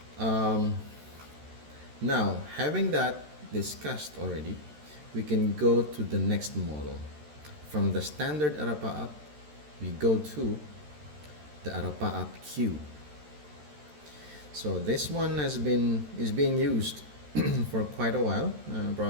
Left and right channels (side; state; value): left; late; 13 ms